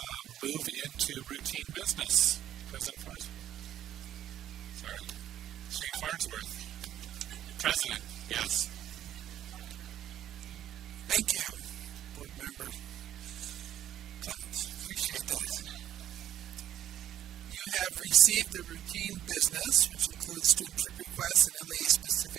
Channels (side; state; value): left; quieter; 11.7 dB